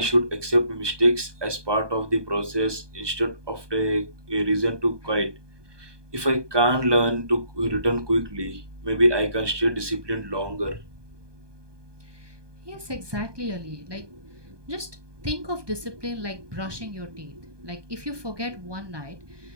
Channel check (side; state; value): left; late; 1.2 ms